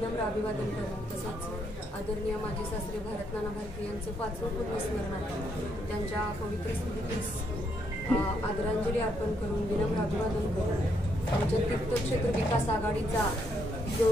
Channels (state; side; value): normal; both; correlation 0.75